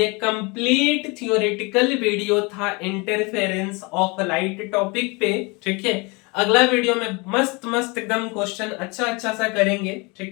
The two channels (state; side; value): quieter; right; 27.9 dB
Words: कंप्लीट थियोरेटिकल वीडियो था इंटरफेरेंस ऑफ लाइट टॉपिक पे, ठीक है। अगला वीडियो में मस्त मस्त एकदम क्वेश्चन अच्छा सा करेंगे,